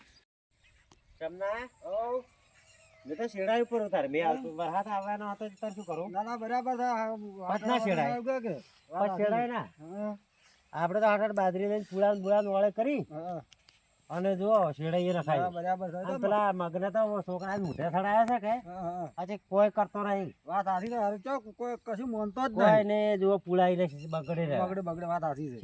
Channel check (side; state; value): both; identical; correlation 1.00